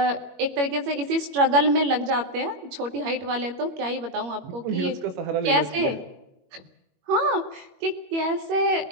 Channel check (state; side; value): late; left; 21 ms